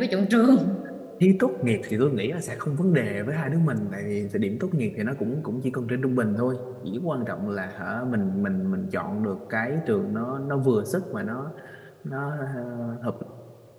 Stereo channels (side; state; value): both; identical; correlation 1.00